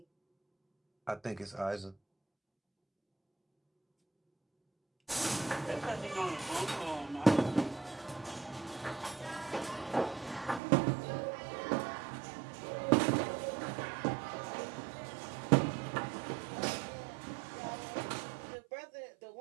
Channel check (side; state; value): left; drops out; at 10.6 s